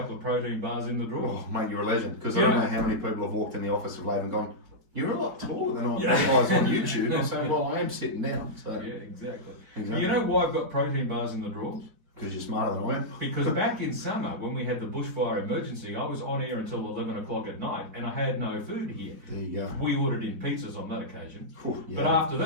of protein bars in the drawer? Oh, mate, you're a legend. Because I don't know how many people have walked in the office of late and gone, "You're a lot taller than I realise on YouTube." I say, "Well, I am sitting down." So. Yeah, exactly. You know why I've got protein bars in the drawers? Because you're smarter than I am. Because back in summer, when we had the bushfire emergency, I was on air until 11 o'clock at night and I had no food here. There you go. We ordered in pizzas on that occasion. Yeah. But after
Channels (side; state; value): left; late; 4.6 ms